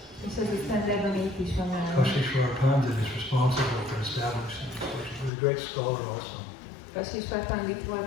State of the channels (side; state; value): right; drops out; at 5.3 s